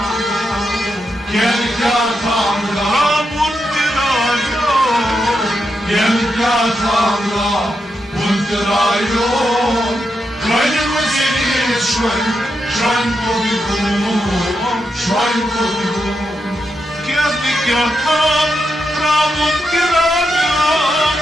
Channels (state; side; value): normal; both; correlation 0.85